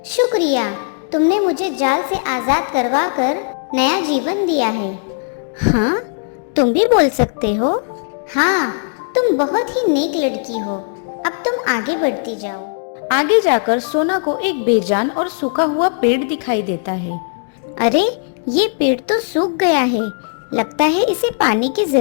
शुक्रिया, तुमने मुझे जाल से आजाद करवा कर नया जीवन दिया है। हाँ, तुम भी बोल सकते हो। हाँ, तुम बहुत ही नेक लड़की हो। अब तुम आगे बढ़ती जाओ। आगे जाकर सोना को एक बेजान और सूखा हुआ पेड़ दिखाई देता है। अरे, ये पेड़ तो सूख गया है। लगता है इसे पानी की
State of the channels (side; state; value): right; silent; digital silence